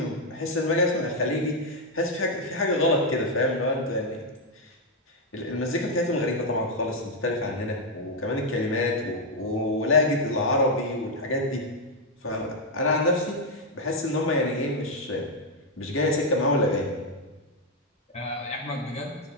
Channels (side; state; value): both; normal; correlation 0.01